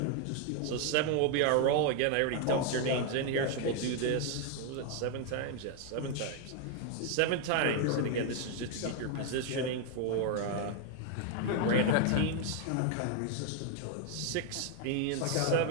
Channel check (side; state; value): both; different; correlation 0.01